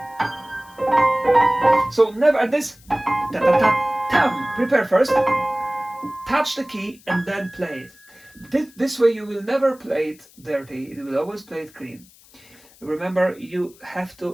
So never at this, prepare first, touch the key, and then play it. This way you will never play it dirty, you will always play it clean. Remember, you have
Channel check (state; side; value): noise; left; hiss, 26 dB below the sound